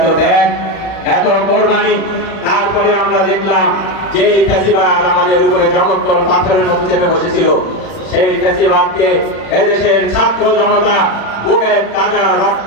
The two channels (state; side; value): late; right; 35 ms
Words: ত্যাগ, এত কোরবানি, তারপরে আমরা দেখলাম যে এই ফ্যাসিবাদ আমাদের উপরে জগদ্দল পাথরের মতো চেপে বসেছিল, সেই ফ্যাসিবাদকে এদেশের ছাত্র জনতা বুকের তাজা রক্ত